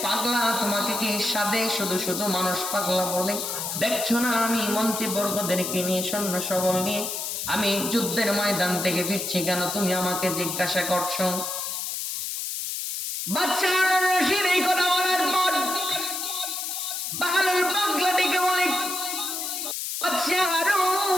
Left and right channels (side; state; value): left; noise; hiss, 3 dB below the sound